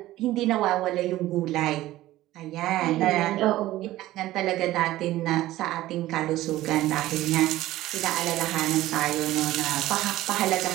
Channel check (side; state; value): left; quieter; 15.8 dB